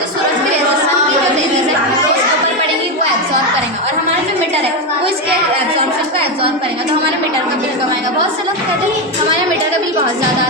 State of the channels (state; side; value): normal; both; correlation 0.10